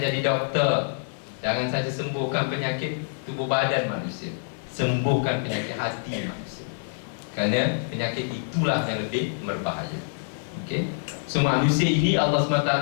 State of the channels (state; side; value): silent; right; digital silence